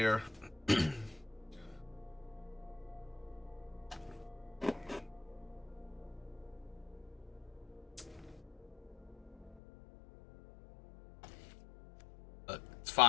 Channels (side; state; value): right; drops out; at 9.6 s